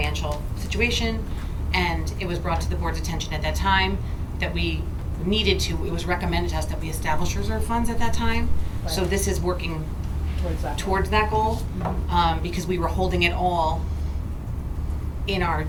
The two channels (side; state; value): both; identical; correlation 1.00